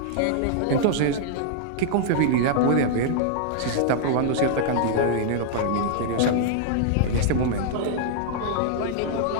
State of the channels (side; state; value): both; different; correlation -0.01